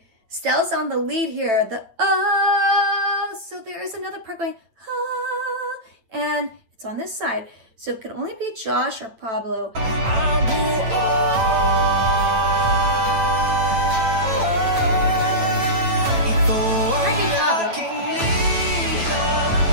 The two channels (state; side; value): late; left; 9.1 ms